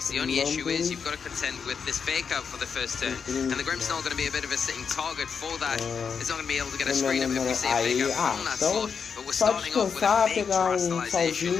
The only issue is you've got to contend with this fake out for the first turn, and the Grimmsnarl going to be a bit of a sitting target for that. It's not going to be able to get a screen up if we see a fake out from that slot, but we're só starting off with a descansar, big pegar salzinho,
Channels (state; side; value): quieter; right; 6.3 dB